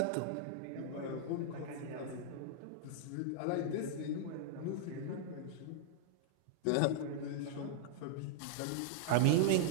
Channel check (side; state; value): both; different; correlation -0.01